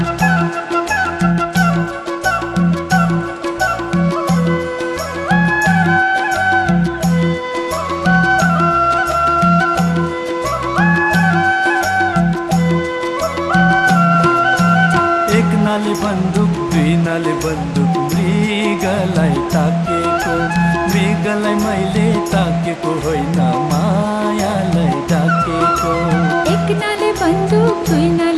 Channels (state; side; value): identical; both; correlation 1.00